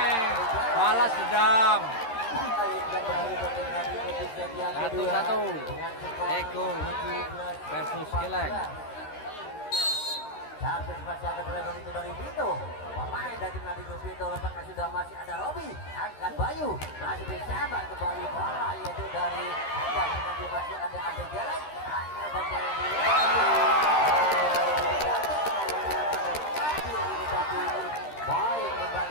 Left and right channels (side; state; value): right; late; 13 ms